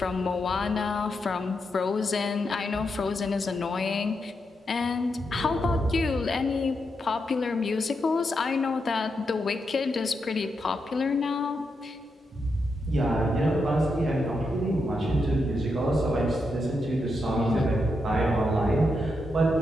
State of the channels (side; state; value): both; normal; correlation 0.84